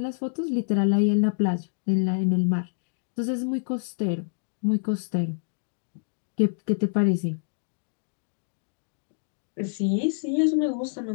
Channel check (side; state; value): right; silent; digital silence